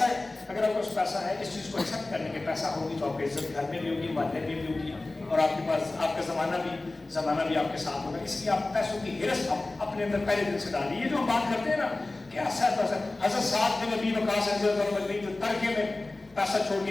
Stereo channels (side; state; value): right; quieter; 3.0 dB